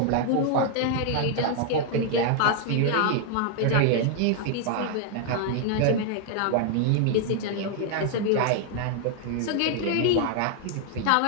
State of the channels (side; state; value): both; different; correlation 0.00